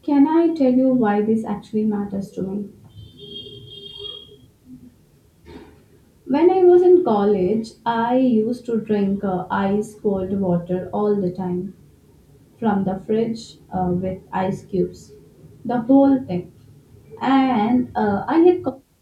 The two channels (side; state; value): both; identical; correlation 1.00